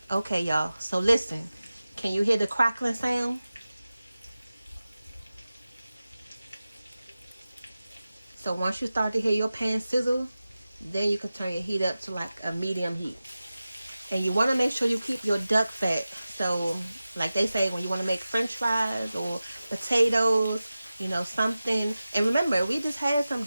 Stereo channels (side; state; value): both; inverted; correlation -0.96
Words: Okay, y'all. So listen. Can you hear the crackling sound? So once you start to hear your pan sizzle, then you can turn your heat up to like a medium heat. And you want to make sure you keep your duck fat. So like they say, when you want to make french fries or potatoes, you know, something. And remember, we just had some